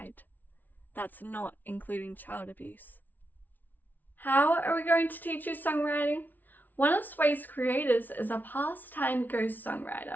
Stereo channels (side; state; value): right; late; 0.083 ms